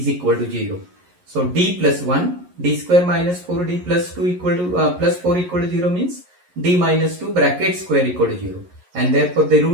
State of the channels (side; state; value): left; late; 11 ms